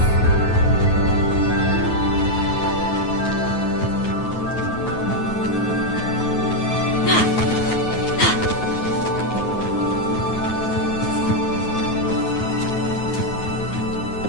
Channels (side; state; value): right; late; 9.4 ms